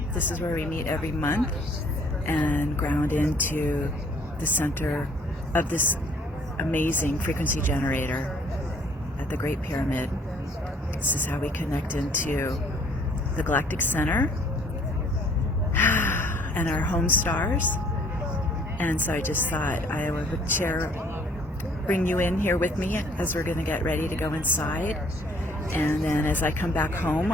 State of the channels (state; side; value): normal; both; correlation 0.59